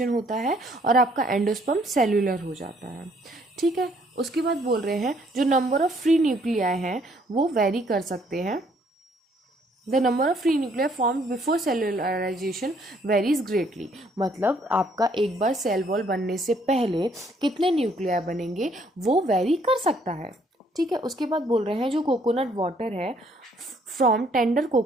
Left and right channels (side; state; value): both; normal; correlation 0.65